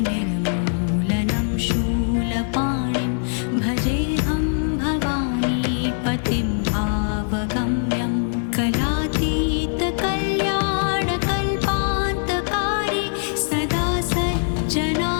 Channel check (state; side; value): silent; right; digital silence